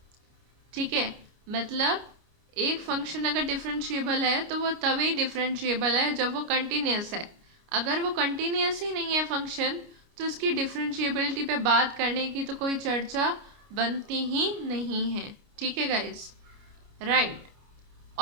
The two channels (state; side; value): late; left; 29 ms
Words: ठीक है, मतलब एक फंक्शन अगर डिफरेंशिएबल है तो वो तभी डिफरेंशिएबल है जब वो कंटिन्यूस है। अगर वो कंटिन्यूस ही नहीं है फंक्शन तो उसकी डिफरेंशिएबिलिटी पे बात करने की तो कोई चर्चा बनती ही नहीं है। ठीक है गाइस, राइट।